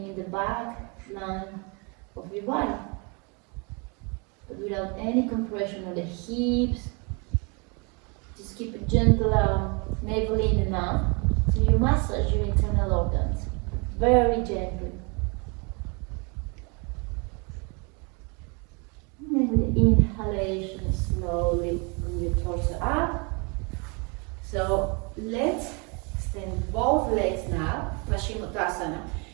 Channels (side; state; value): left; quieter; 32.0 dB